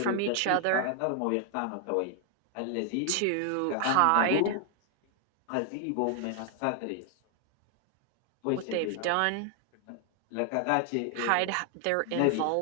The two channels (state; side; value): different; both; correlation 0.00